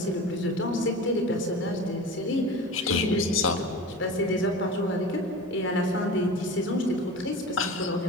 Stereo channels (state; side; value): normal; both; correlation 0.33